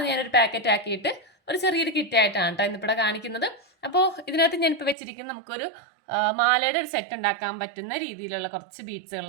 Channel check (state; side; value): drops out; left; at 5.0 s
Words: ഞാനൊരു പാക്കറ്റ് ആക്കിയിട്ട് ഒരു ചെറിയൊരു കിറ്റായിട്ടാണ് കേട്ടോ ഇന്നിവിടെ കാണിക്കുന്നത്. അപ്പോൾ ഇതിനകത്ത് ഞാനിപ്പോൾ വെച്ചിരിക്കുന്നത് നമുക്കൊരു മാലയുടെ ഒരു സെറ്റ് ഉണ്ടാക്കാൻ പറ്റുന്ന രീതിയിലുള്ള കുറച്ച്